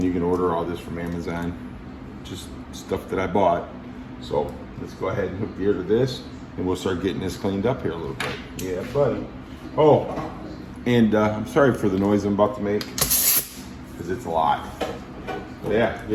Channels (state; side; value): identical; both; correlation 1.00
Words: you can order all this from Amazon. Just stuff that I bought. So let's go ahead and hook the air to this, and we'll start getting this cleaned up here a little bit. Yeah, buddy. Oh, and I'm sorry for the noise I'm about to make, because it's a lot. But yeah,